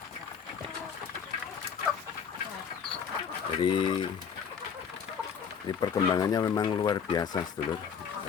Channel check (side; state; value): right; quieter; 7.0 dB